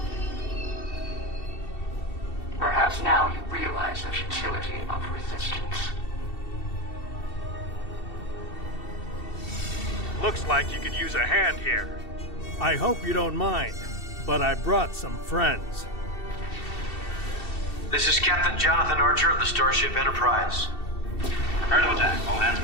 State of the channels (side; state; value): right; late; 2.7 ms